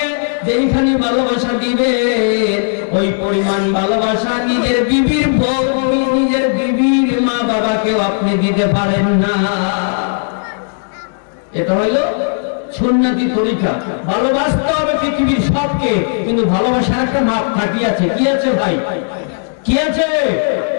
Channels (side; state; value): right; silent; digital silence